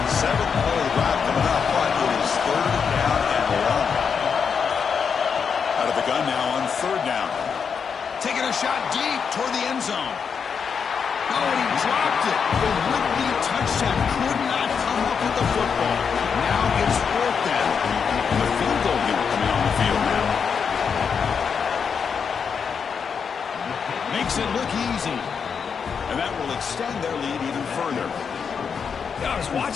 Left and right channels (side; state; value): right; quieter; 6.4 dB